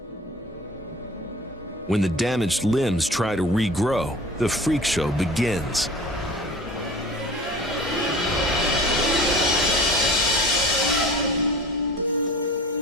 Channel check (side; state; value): both; normal; correlation 0.41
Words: When the damaged limbs try to regrow, the freak show begins.